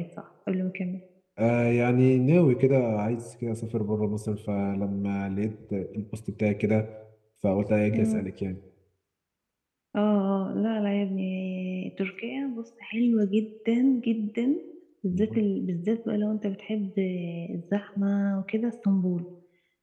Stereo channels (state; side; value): identical; both; correlation 1.00